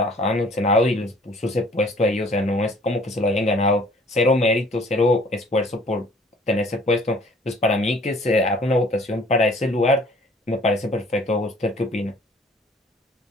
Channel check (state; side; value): normal; both; correlation 0.55